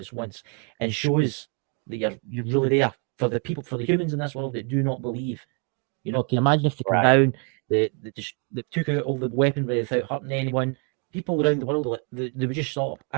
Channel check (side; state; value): left; quieter; 38.4 dB